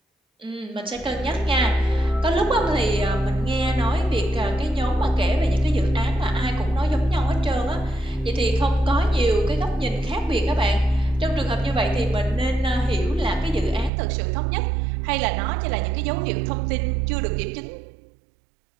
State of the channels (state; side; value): drops out; left; at 13.9 s